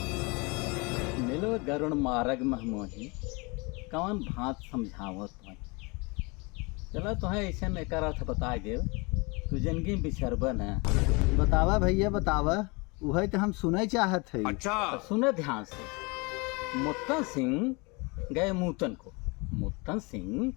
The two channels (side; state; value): right; quieter; 28.3 dB